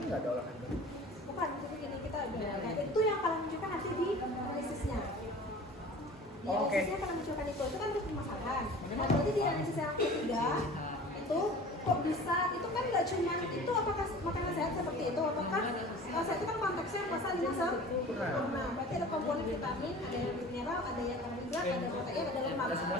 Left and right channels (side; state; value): both; normal; correlation 0.41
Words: nggak ada olahraga. Bukan, tapi gini kita nah, itu yang kalian munculkan nanti di analisisnya. Di analisisnya kalian munculkan itu kan untuk permasalahan. Nah, berarti di analisis yang ketiga itu kok bisa, itu kan nggak cuma itu apakah makanan sehat seperti itu, apakah sehat itu kan konteksnya pasal 51. Nah, berarti ada komponen vitamin, ada yang mineral, ada yang karbohidrat, ada protein, ada lemak.